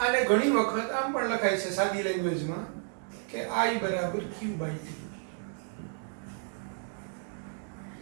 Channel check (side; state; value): left; silent; 57 dB below the other